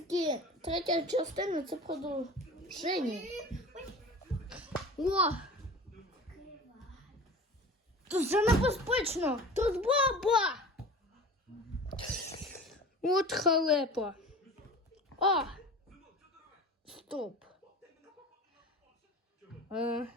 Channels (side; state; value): both; normal; correlation 0.37